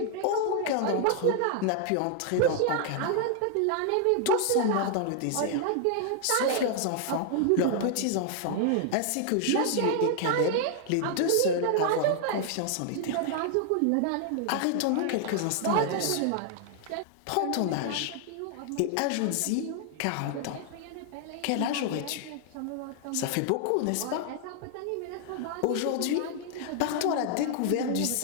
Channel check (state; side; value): different; both; correlation 0.00